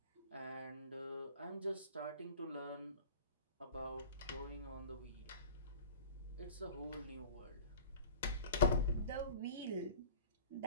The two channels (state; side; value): inverted; both; correlation -0.40